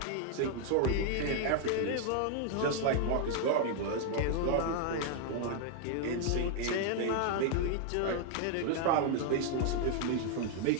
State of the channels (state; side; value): different; both; correlation 0.00